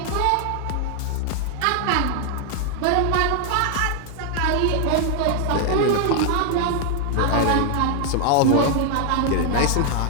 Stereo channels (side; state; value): both; different; correlation 0.00